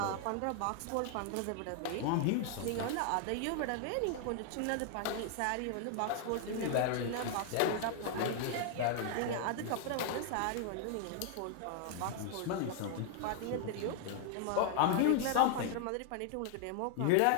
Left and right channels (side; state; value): both; different; correlation 0.00